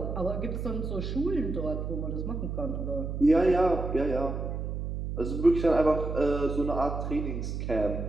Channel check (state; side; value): noise; right; hum, 4 dB below the sound